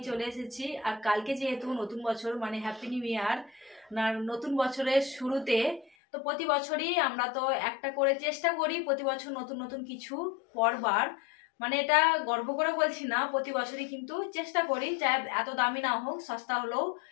চলে এসেছি। আর কালকে যেহেতু নতুন বছর, মানে হ্যাপি নিউ ইয়ার, নতুন বছরের শুরুতে তো প্রতি বছরই আমরা তো একটা করে চেষ্টা করি প্রতি বছর নতুন নতুন কিছু করবার। মানে এটা গর্ব করে বলছি না, প্রতি বছরই কিন্তু চেষ্টা করি, চাই এত দামি না হোক, সস্তা হলেও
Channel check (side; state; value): right; drops out; at 5.9 s